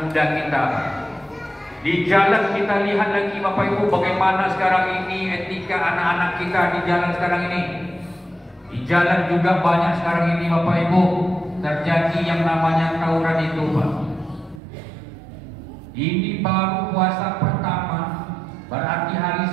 muda kita. Di jalan kita lihat lagi Bapak Ibu bagaimana sekarang ini etika anak-anak kita di jalan sekarang ini. Di jalan juga banyak sekarang ini Bapak Ibu terjadi yang namanya tawuran itu Pak. Ini baru puasa pertama, berarti hari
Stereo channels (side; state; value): left; drops out; at 14.6 s